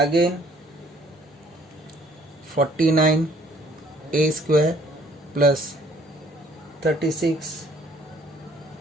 49 a square plus 36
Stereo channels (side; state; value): both; normal; correlation 0.60